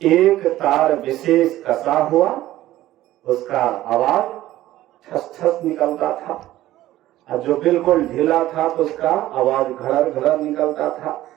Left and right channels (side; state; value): left; quieter; 14.9 dB